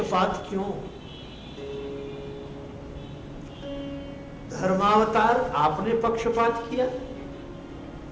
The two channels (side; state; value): both; identical; correlation 1.00